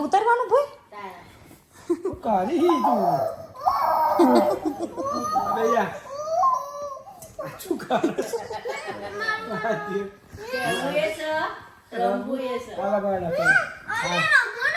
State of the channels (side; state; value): both; identical; correlation 1.00